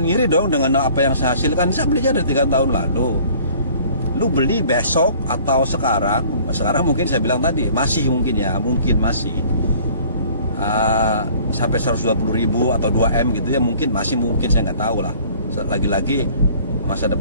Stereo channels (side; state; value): both; inverted; correlation -0.52